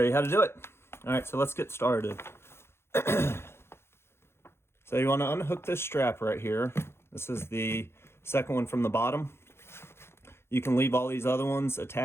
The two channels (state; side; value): late; right; 0.12 ms